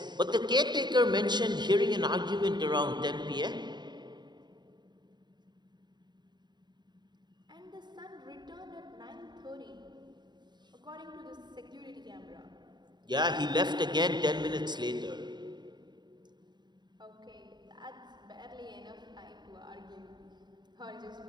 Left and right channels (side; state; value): left; late; 0.21 ms